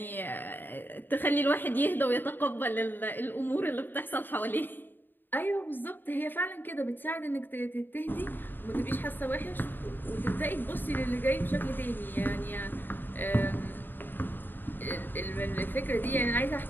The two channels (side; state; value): right; late; 0.094 ms